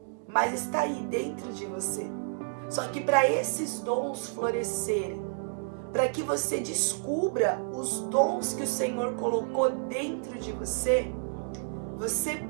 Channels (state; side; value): silent; left; digital silence